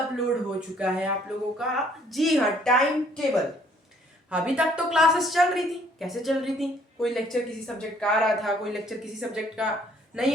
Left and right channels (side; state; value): both; normal; correlation 0.62